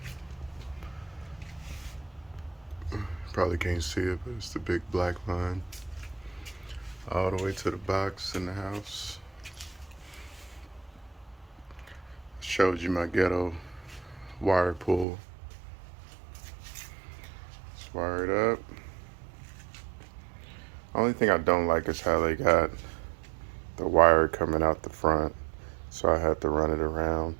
Probably can't see it, but it's the big black line all the way to the box in the house. Showed you my ghetto wire pull. It's wired up. Only thing I don't like is how they got the wire coming out the front, so I had to run it around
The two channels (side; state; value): left; drops out; at 15.1 s